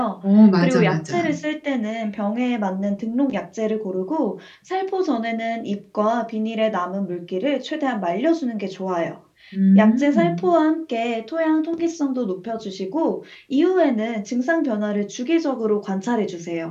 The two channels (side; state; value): both; identical; correlation 1.00